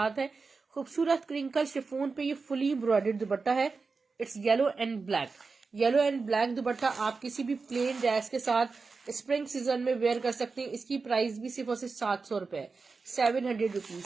है। खूबसूरत क्रिंकल शिफोन पे ये फुली एम्ब्रॉयडर्ड दुपट्टा है। It's yellow and black. Yellow and black दुपट्टा आप किसी भी प्लेन ड्रेस के साथ स्प्रिंग सीजन में वेयर कर सकते हैं। इसकी प्राइस भी सिर्फ और सिर्फ 700 रुपए, 700 रुपीज।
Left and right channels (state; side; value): quieter; left; 4.4 dB